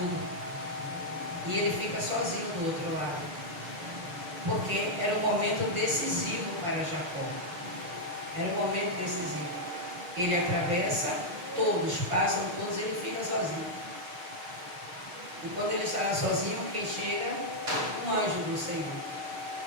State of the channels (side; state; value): left; late; 6.6 ms